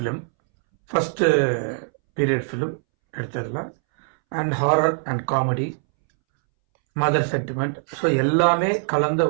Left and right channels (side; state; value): left; silent; 64 dB below the other